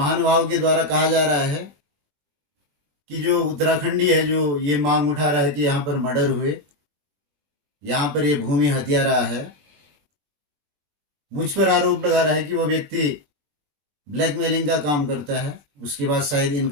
के द्वारा कहा जा रहा है कि जो उत्तराखंडी है जो ये मांग उठा रहा है कि यहाँ पर मर्डर हुए, यहाँ पर ये भूमि हत्या रहा है, मुझ पर आरोप लगा रहा है कि वो व्यक्ति ब्लैकमेलिंग का काम करता है, उसके बाद शायद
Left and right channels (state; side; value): late; left; 21 ms